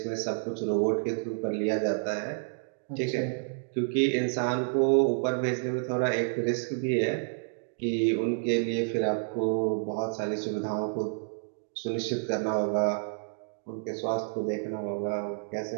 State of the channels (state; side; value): silent; left; digital silence